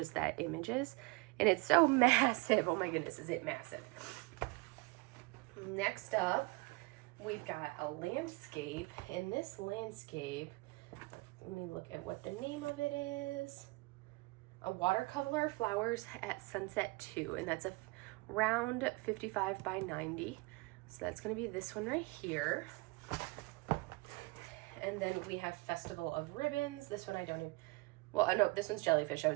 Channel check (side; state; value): left; quieter; 25.4 dB